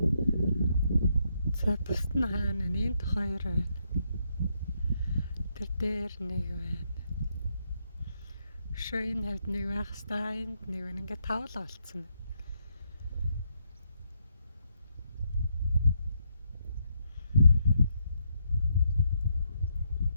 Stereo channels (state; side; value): inverted; both; correlation -0.77